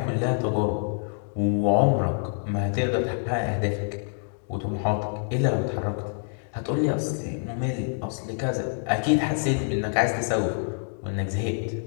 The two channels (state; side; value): silent; right; 61 dB below the other